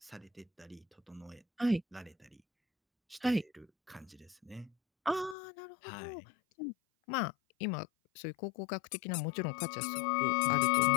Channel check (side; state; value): right; drops out; at 5.4 s